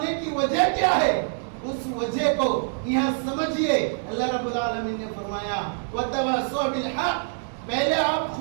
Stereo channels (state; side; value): silent; left; digital silence